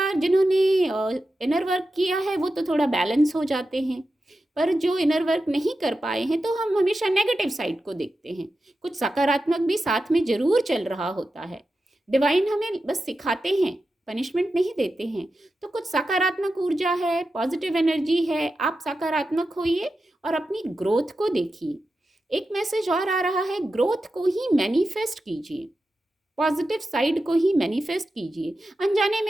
जिन्होंने इनर वर्क किया है वो तो थोड़ा बैलेंस हो जाते हैं, पर जो इनर वर्क नहीं कर पाए हैं तो हम हमेशा नेगेटिव साइड को देखते हैं। कुछ सकारात्मक भी साथ में जरूर चल रहा होता है। डिवाइन हमें बस सिखाते हैं, पनिशमेंट नहीं देते हैं। तो कुछ सकारात्मक ऊर्जा है, पॉजिटिव एनर्जी है, आप सकारात्मक होइए और अपनी ग्रोथ को देखिए। एक मैसेज और आ रहा है, ग्रोथ को ही मैनिफेस्ट कीजिए, पॉजिटिव साइड को ही मैनिफेस्ट कीजिए। अनजाने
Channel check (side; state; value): both; normal; correlation 0.91